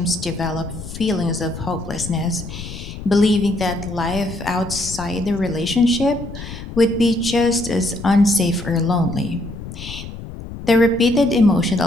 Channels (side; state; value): left; noise; rumble, 11 dB below the sound